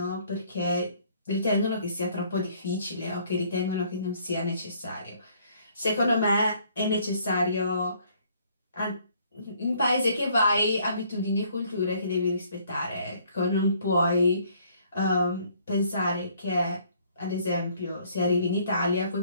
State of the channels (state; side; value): inverted; both; correlation -0.62